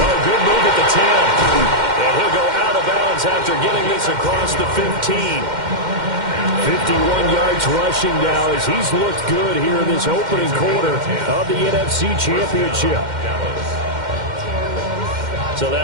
good move at the 10. And he'll go out of bounds after getting this across the 15. 51 yards rushing now as he's looked good here in this opening quarter of the NFC Championship. So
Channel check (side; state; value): left; late; 2.1 ms